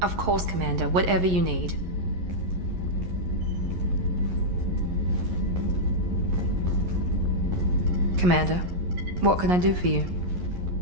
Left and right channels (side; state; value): left; late; 11 ms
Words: course, Commander. Whatever you need. Commander, what can I do for you?